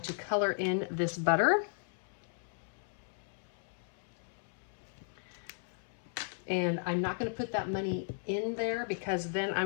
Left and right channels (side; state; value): right; silent; 54 dB below the other